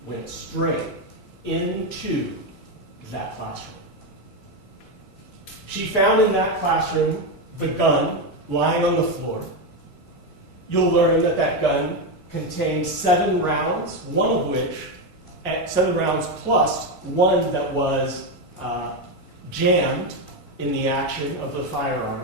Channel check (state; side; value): normal; both; correlation 0.09